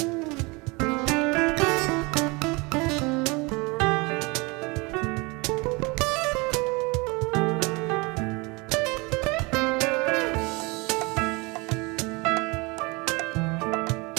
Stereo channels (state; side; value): quieter; left; 26.6 dB